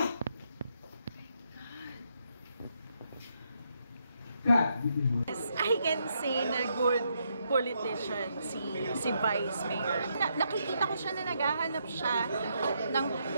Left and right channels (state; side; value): inverted; both; correlation -0.77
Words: I can say na good politician si Vice Mayor. Nakikita ko siya na naghahanap siya ng